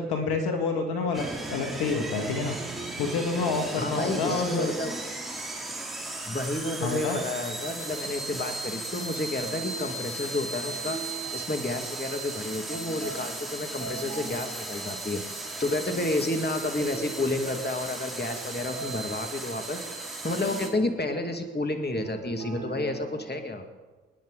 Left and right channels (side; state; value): both; normal; correlation 0.45